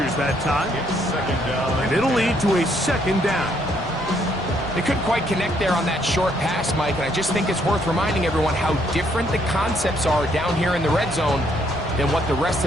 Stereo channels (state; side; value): normal; both; correlation 0.70